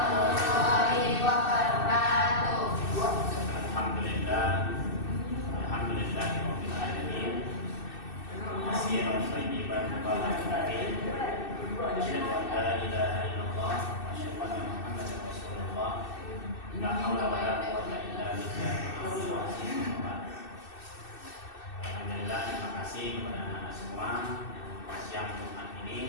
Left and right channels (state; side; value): late; right; 2.6 ms